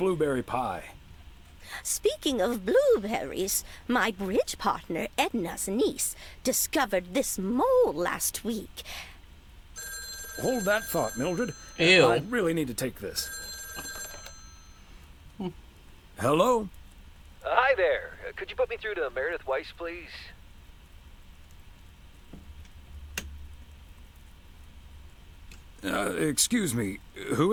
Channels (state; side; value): identical; both; correlation 1.00